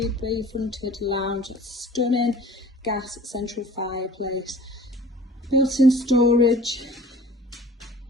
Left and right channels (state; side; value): normal; both; correlation 0.47